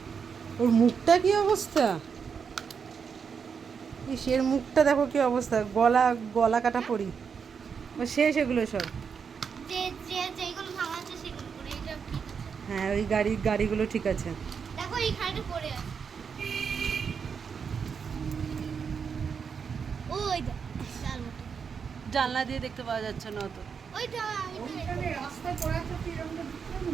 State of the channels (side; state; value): left; quieter; 6.3 dB